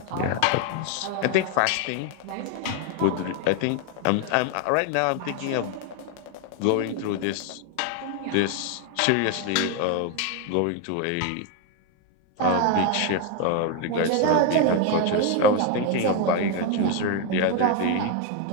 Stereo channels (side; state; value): both; different; correlation 0.01